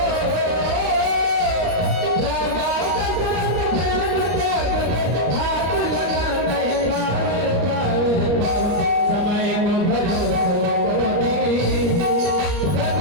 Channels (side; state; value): left; late; 34 ms